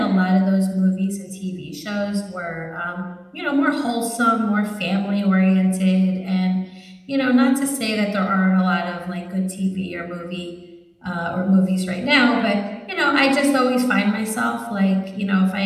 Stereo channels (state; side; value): identical; both; correlation 1.00